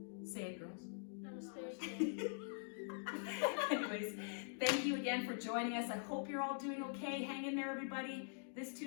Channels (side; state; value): right; silent; digital silence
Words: Say it, girls. Namaste. Anyways, thank you again for joining us. I hope you're all doing okay. Hang in there, everybody. This